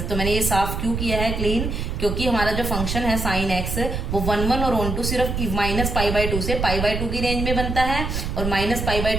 तो मैंने ये साफ क्यों किया है क्लीन, क्योंकि हमारा जो फंक्शन है साइन एक्स वो 1 1 और 1 2 सिर्फ -π/2 से π/2 की रेंज में बनता है और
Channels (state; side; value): noise; right; rumble, 3 dB below the sound